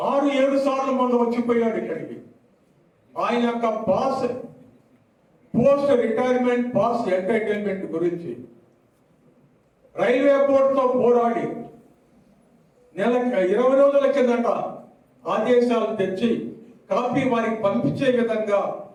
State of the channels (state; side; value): identical; both; correlation 1.00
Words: సార్లు మొన్న వచ్చిపోయాడు ఇక్కడికి. ఆయన యొక్క పోస్ట్ రిటైర్మెంట్ పాస్ ఎంటైటిల్మెంట్ గురించి రైల్వే బోర్డుతో పోరాడి నెలకు 20 రోజుల కిందట ఆదేశాలు తెచ్చి కాపీ వారికి పంపించే విధంగా